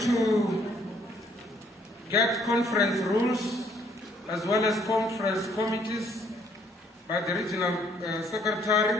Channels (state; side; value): normal; both; correlation 0.65